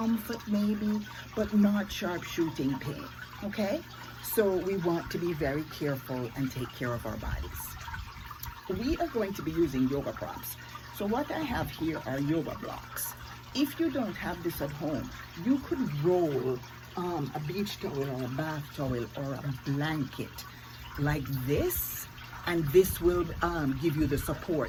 maybe, but not sharp shooting pain, okay? So we want to be very careful and take care of our bodies. We are going to be using yoga props. So what I have here are yoga blocks. If you don't have this at home, you could roll a beach towel or a bath towel or a blanket like this, and this will give you the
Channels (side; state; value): both; identical; correlation 1.00